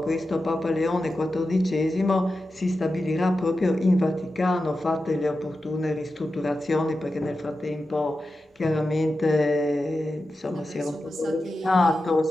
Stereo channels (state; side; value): normal; both; correlation 0.92